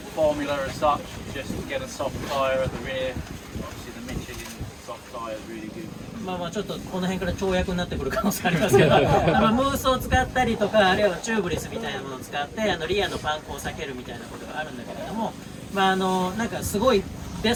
formula as such. Just get a soft tyre at the rear. Obviously the Mission soft tyre is really good. まあちょっとこの辺から跳躍になってくる可能性ありますけど、ムースを使ったりとか、あるいはチューブレスみたいなものを使ってリアのパンクを避けるみたいなことがあるんだけれども、なんかすごいベ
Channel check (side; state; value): both; identical; correlation 1.00